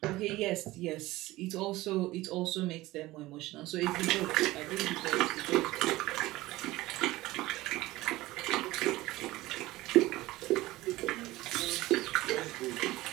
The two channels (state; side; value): quieter; left; 18.4 dB